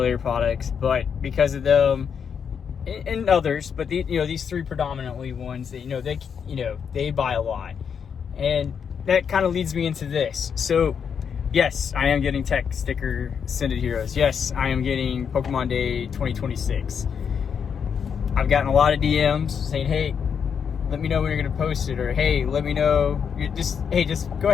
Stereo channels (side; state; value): right; quieter; 7.1 dB